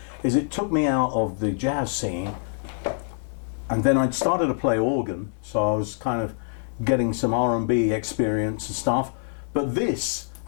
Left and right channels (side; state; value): right; silent; digital silence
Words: is it took me out of the jazz scene, and then I started to play organ, so I was kind of getting some R&B experience and stuff. But this,